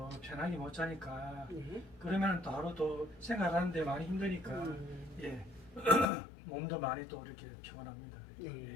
편하게 못 자니까, 네. 그러면은 또 하루 또 생활하는데 많이 힘드니까, 예. 몸도 많이 또 이렇게 피곤합니다. 네. 예,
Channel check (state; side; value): drops out; right; at 6.1 s